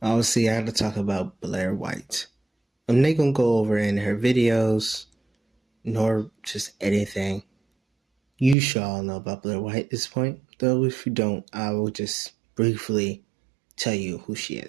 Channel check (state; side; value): drops out; left; at 8.6 s